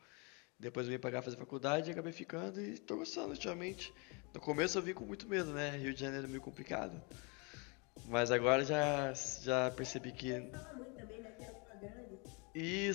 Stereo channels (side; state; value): right; quieter; 32.1 dB